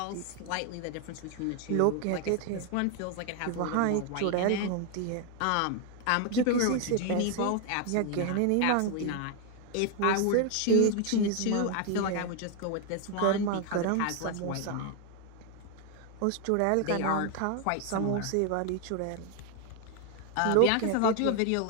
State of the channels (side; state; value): both; different; correlation 0.01